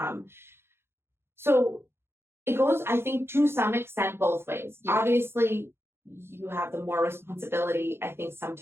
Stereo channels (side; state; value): left; late; 0.12 ms